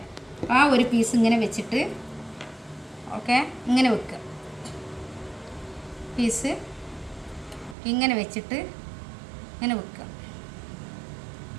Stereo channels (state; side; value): drops out; left; at 7.8 s